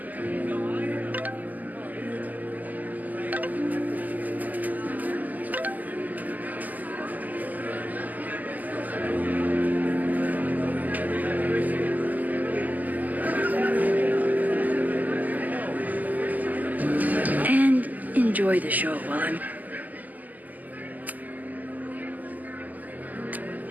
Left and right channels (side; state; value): left; late; 0.081 ms